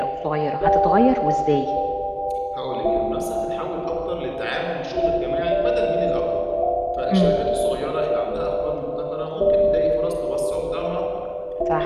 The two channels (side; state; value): both; identical; correlation 1.00